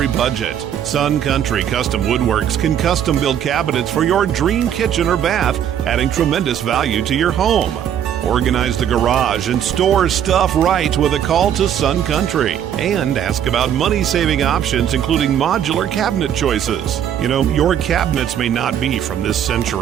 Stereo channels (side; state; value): left; quieter; 9.6 dB